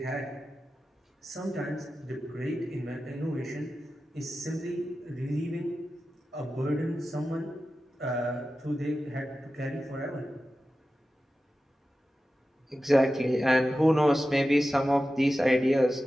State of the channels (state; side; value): normal; both; correlation 0.93